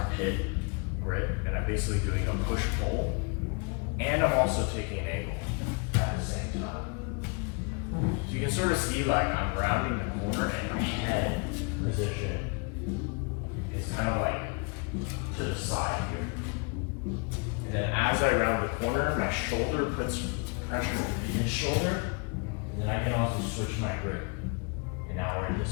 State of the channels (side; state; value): right; quieter; 33.9 dB